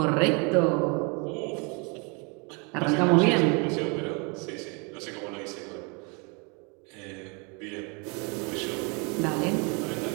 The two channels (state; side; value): quieter; left; 31.9 dB